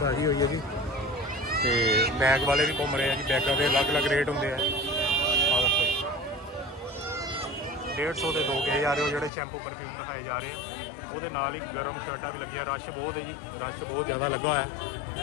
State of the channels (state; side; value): drops out; right; at 9.3 s